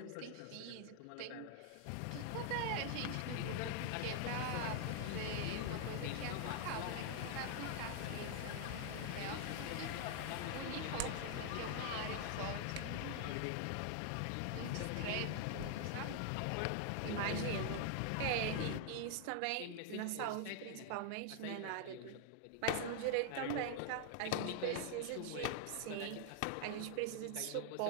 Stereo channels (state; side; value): different; both; correlation 0.00